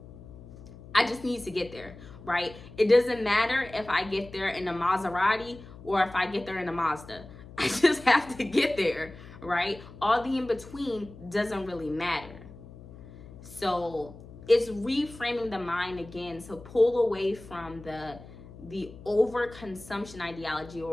I just need to get there, right? It doesn't matter if I get there in a Maserati or if I get there in a Mazda. I just have to get there, right? All the in between doesn't really matter. So it's reframing the mind again. So pull away from the overconsumption ideology,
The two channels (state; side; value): noise; left; hum, 17 dB below the sound